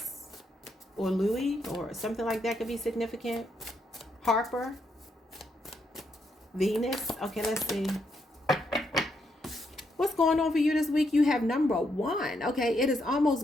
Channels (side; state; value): both; normal; correlation 0.78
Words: or Louis or something like that could be significant. Harper, Venus. Okay, let's see. What's going on for you this week? You have number 1. Okay, it is